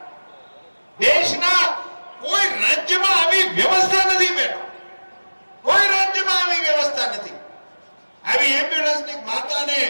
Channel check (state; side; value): inverted; both; correlation -1.00